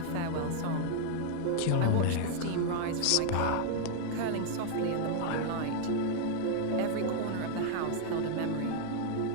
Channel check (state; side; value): different; both; correlation 0.00